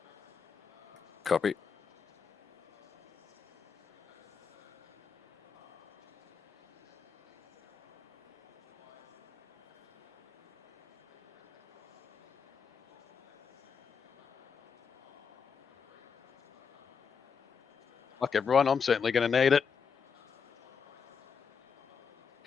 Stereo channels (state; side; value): quieter; right; 6.2 dB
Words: Copy. Fuck everyone, I'm certainly going to need it.